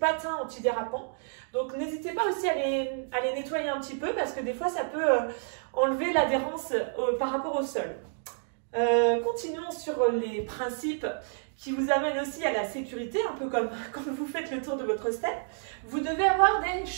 antidérapants. Donc n'hésitez pas aussi à les nettoyer un petit peu parce que des fois ça peut enlever l'adhérence par rapport au sol. Continuons sur les principes qui vous amènent aussi à la sécurité, un peu comme quand vous faites le tour de votre step. Vous devez avoir des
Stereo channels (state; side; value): silent; left; digital silence